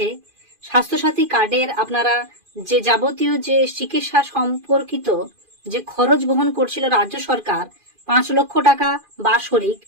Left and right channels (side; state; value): left; late; 2.4 ms